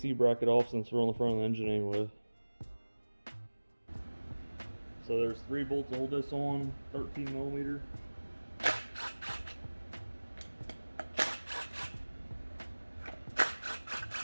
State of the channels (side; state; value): both; inverted; correlation -1.00